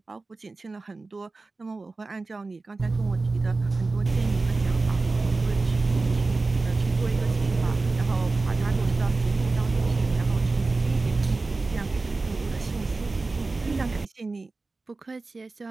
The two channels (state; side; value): quieter; left; 3.6 dB